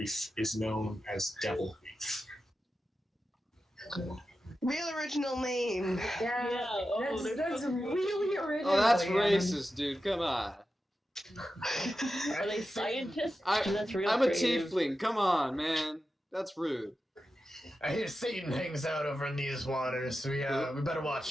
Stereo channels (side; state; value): both; normal; correlation 0.91